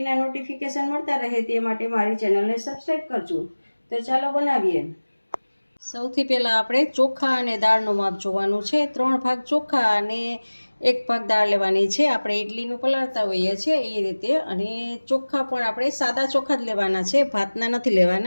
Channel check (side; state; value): both; inverted; correlation -1.00